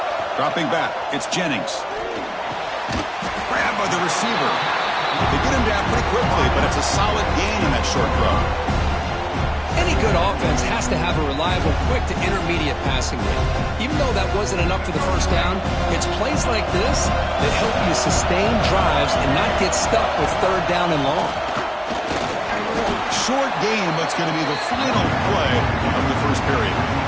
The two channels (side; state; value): both; identical; correlation 1.00